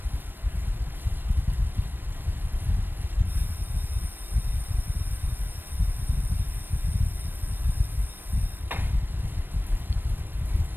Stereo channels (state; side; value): late; left; 0.094 ms